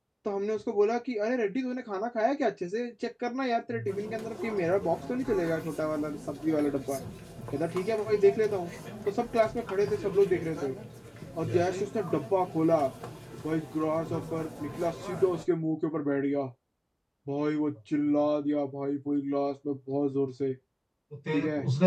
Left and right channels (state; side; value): identical; both; correlation 1.00